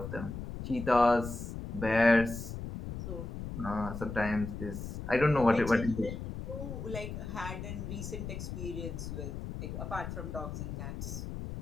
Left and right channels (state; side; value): noise; left; rumble, 7 dB below the sound